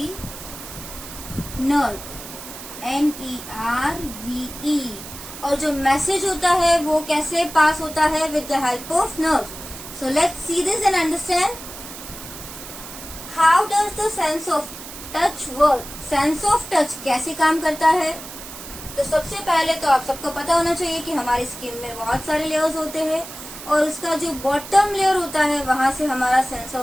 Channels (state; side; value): noise; right; hiss, 12 dB below the sound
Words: nerve, NERVE, और जो message होता है वो कैसे पास होता है? With the help of nerves. So let's see this and understand. How does the sense of touch work? Sense of touch कैसे काम करता है? तो सबसे पहले तो आप सबको पता होना चाहिए कि हमारी स्किन में बहुत सारे लेयर्स होते हैं और उसका जो बॉटम लेयर होता है वहां से हमारा सेंस